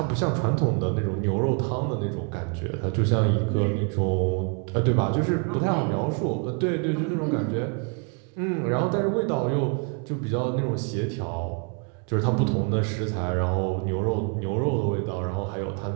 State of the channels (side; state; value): left; quieter; 36.2 dB